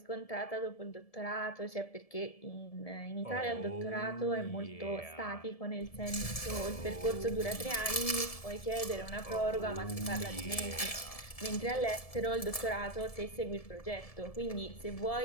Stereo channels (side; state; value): right; late; 1.7 ms